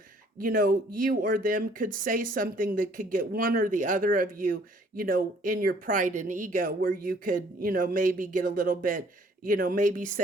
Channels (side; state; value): both; normal; correlation 0.60